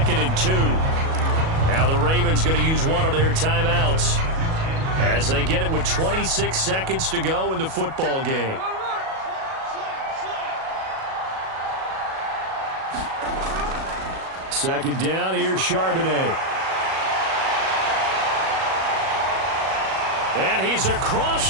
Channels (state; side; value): late; left; 37 ms